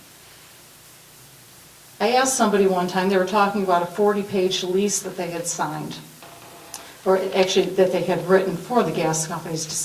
I asked somebody one time, they were talking about a 40-page lease that they had signed, or actually that they had written for the gas companies to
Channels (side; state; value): both; identical; correlation 1.00